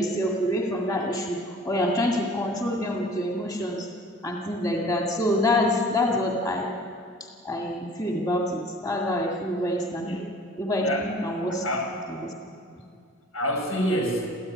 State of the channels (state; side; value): normal; both; correlation 0.47